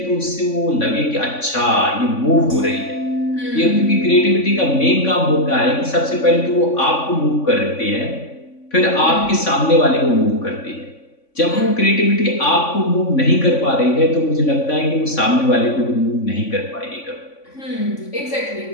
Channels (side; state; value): right; late; 3.5 ms